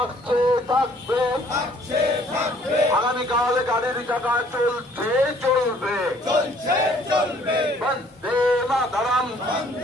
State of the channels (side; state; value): both; normal; correlation 0.60